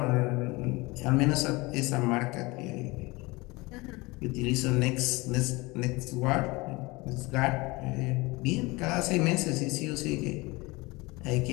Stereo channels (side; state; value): right; quieter; 23.5 dB